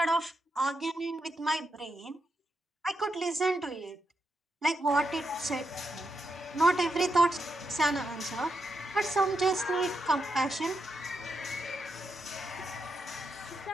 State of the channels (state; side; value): normal; both; correlation 0.83